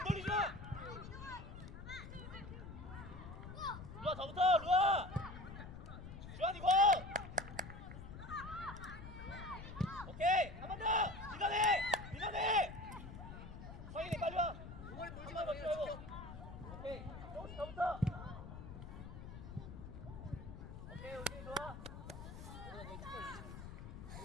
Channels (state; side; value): noise; left; rumble, 11 dB below the sound